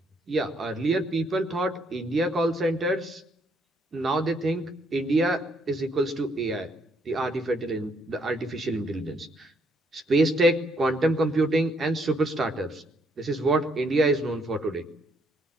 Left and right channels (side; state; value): both; normal; correlation 0.70